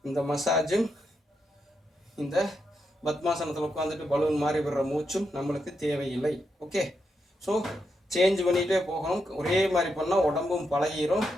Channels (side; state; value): both; normal; correlation 0.84